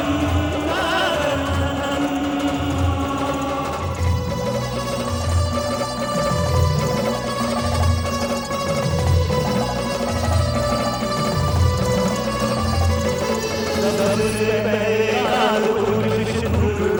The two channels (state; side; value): identical; both; correlation 1.00